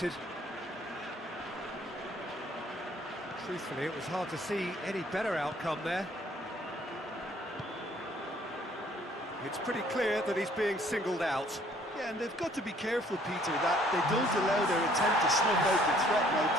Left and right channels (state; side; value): normal; both; correlation 0.60